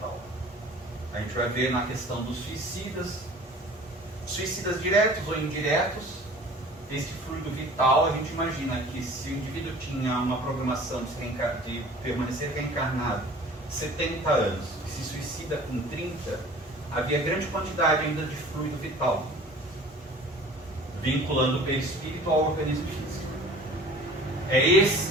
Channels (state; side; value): normal; both; correlation 0.46